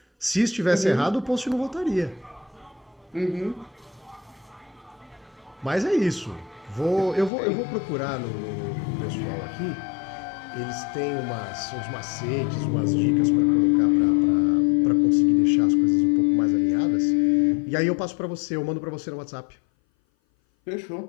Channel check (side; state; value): right; drops out; at 7.3 s